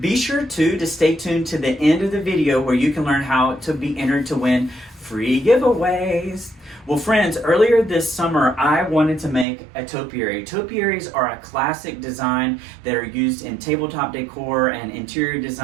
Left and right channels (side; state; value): left; drops out; at 9.5 s